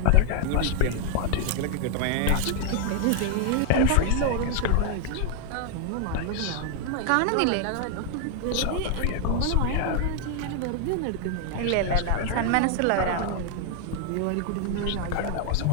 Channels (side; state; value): both; different; correlation 0.00